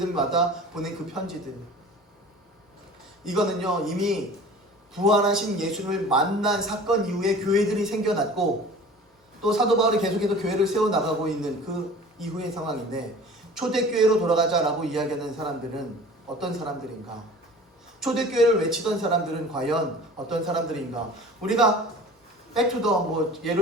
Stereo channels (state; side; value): normal; both; correlation 0.42